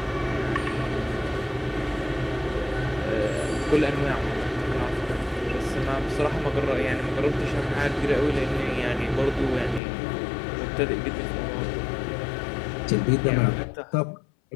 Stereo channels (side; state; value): right; drops out; at 9.8 s